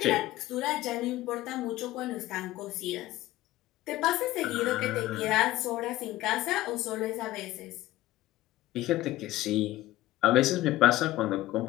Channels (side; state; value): right; quieter; 16.3 dB